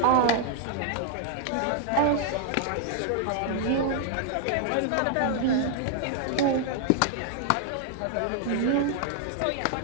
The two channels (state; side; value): different; both; correlation 0.00